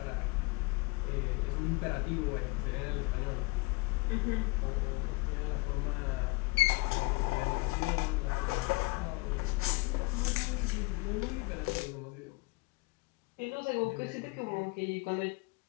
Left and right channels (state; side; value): quieter; right; 24.7 dB